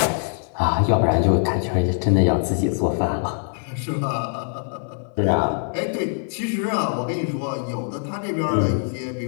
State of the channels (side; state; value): right; silent; 63 dB below the other